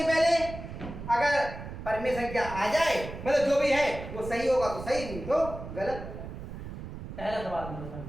पहले, अगर परिमेय संख्या आ जाए, मतलब जो भी है वो सही होगा तो सही, नहीं तो गलत। पहला सवाल हम लोग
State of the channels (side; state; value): right; noise; rumble, 10 dB below the sound